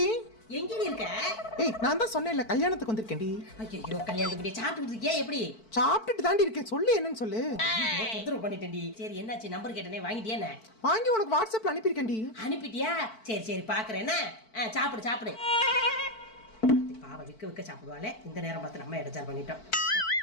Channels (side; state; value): right; late; 4.5 ms